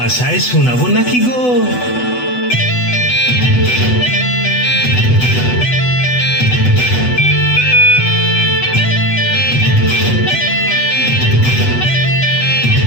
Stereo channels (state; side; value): late; right; 8.0 ms